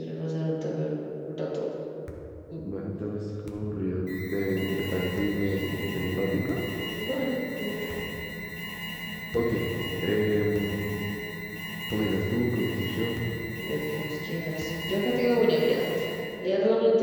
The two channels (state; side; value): identical; both; correlation 1.00